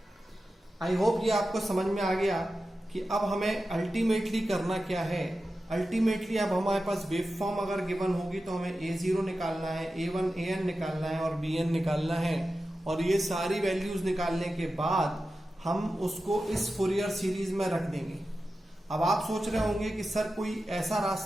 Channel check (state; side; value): normal; both; correlation 0.92